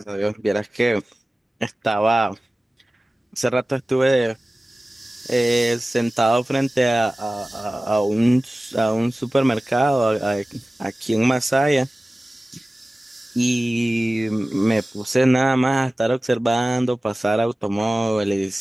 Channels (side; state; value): both; normal; correlation 0.97